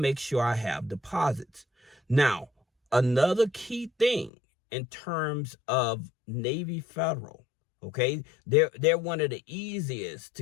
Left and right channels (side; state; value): right; drops out; at 4.3 s